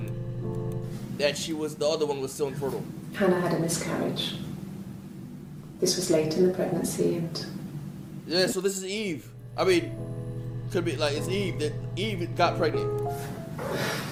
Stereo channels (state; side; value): identical; both; correlation 1.00